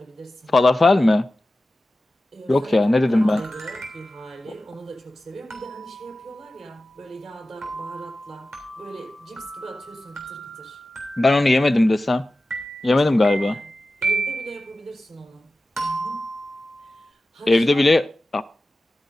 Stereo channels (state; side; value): normal; both; correlation 0.95